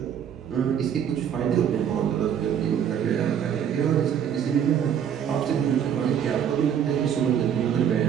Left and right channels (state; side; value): quieter; left; 8.7 dB